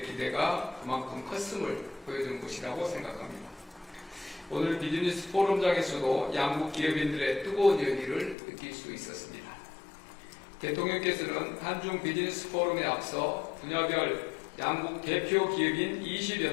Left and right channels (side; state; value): right; drops out; at 8.3 s